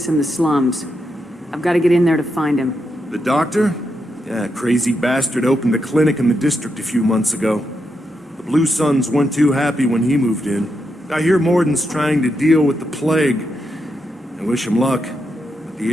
in the slums. I've got to get in there to find him. The doctor? Yeah, crazy bastard opened a clinic in the district a few months ago. The Blue Suns weren't too happy when he moved in. I hear Morden's trying to deal with the plague. I wish him luck, but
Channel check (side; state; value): both; normal; correlation 0.83